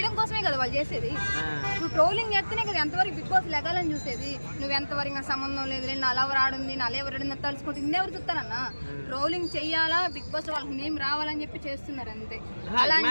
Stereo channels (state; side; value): inverted; both; correlation -1.00